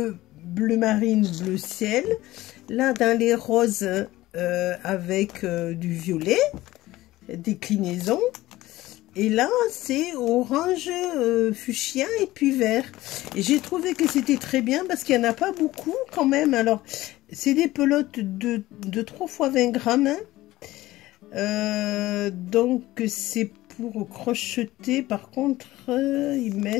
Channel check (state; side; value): quieter; right; 17.1 dB